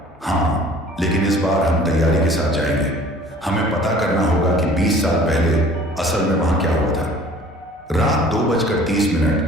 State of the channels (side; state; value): both; normal; correlation 0.49